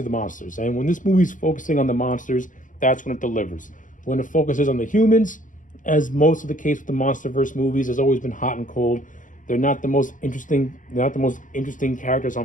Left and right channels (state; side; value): late; right; 0.38 ms